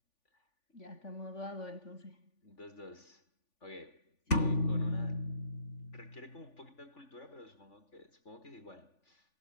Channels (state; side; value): late; right; 3.5 ms